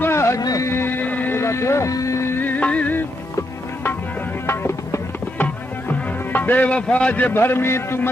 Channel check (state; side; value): normal; both; correlation 0.80